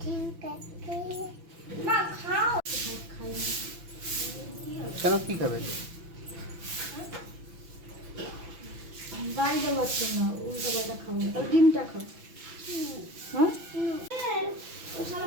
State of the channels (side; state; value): left; late; 6.0 ms